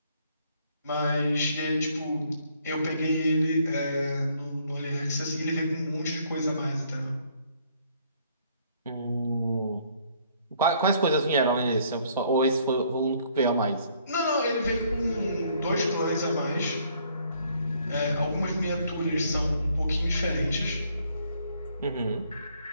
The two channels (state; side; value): inverted; both; correlation -0.65